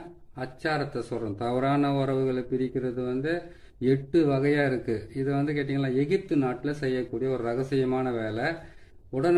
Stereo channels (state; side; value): identical; both; correlation 1.00